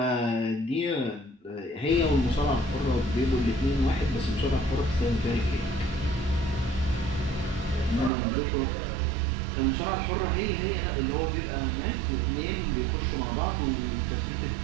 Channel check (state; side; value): drops out; left; at 8.1 s